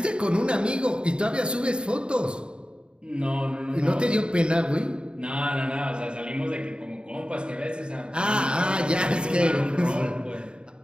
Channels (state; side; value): late; left; 0.051 ms